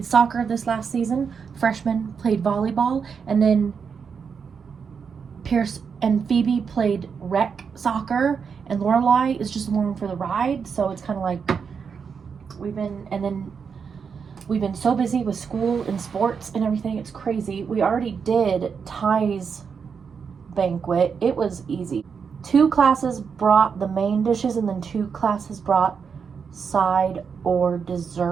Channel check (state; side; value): quieter; left; 6.2 dB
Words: soccer this last season. Freshman played volleyball. And then Pierce and Phoebe played rec soccer. And Lorelai is just along for the ride. So it's kind of like we've been so busy with school and sports and everything. It's crazy. We already did Ty's banquet. It was easy. 2 classes brought the main dishes and then 2 classes brought side or